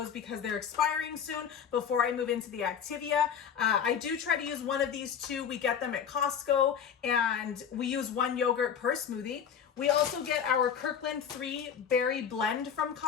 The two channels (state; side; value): quieter; right; 7.7 dB